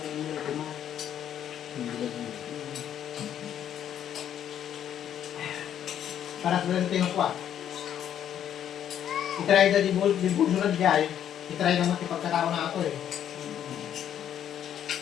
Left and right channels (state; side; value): quieter; right; 10.0 dB